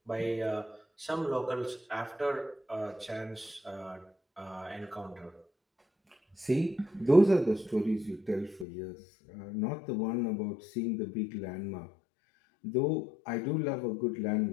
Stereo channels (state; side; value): drops out; right; at 8.7 s